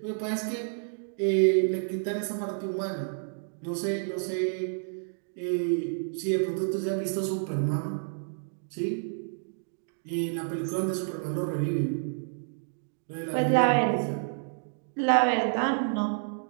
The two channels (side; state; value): left; silent; digital silence